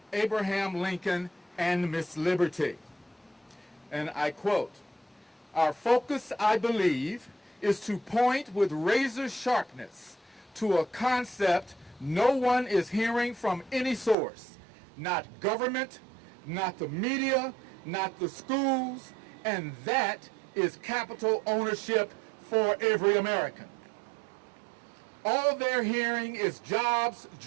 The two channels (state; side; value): drops out; left; at 14.2 s